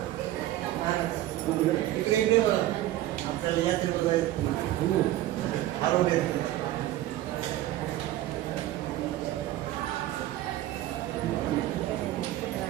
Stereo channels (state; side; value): quieter; left; 14.6 dB